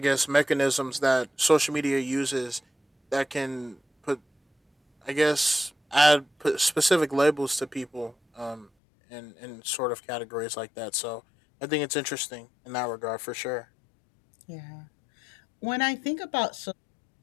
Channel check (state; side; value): drops out; right; at 8.7 s